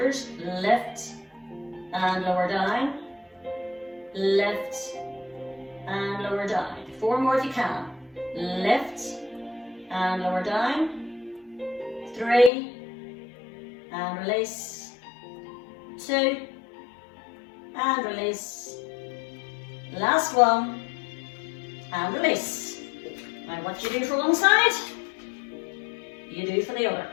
Lift and lower down. Lift and lower down. 4 more if you can. Lift and lower down. 3 and release. 2 and release. Last one and release. Now what you do for one side, you do for the other.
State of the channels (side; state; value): right; drops out; at 12.5 s